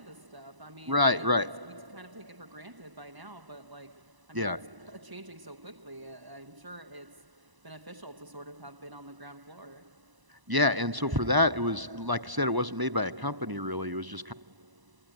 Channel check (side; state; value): left; late; 1.0 ms